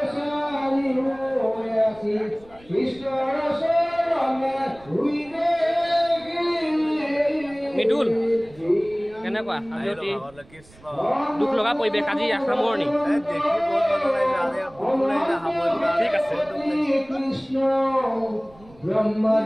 মৃদুল কেনেকুৱা দুখ লগা পৰিৱেশ আজি সামৰণি ঠিক আছে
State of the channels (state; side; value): noise; right; rumble, 25 dB below the sound